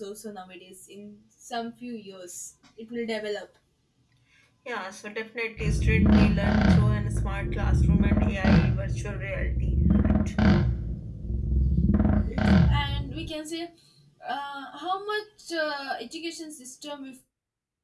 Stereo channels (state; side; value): identical; both; correlation 1.00